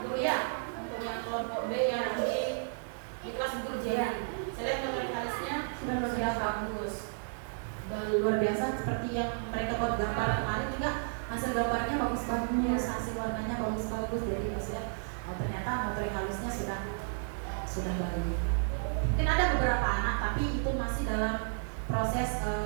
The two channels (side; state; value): left; silent; digital silence